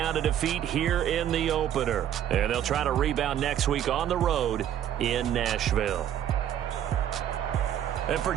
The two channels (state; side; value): quieter; left; 10.4 dB